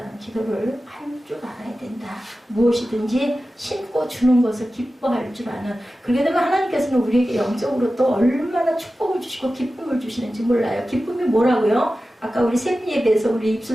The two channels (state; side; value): normal; both; correlation 0.94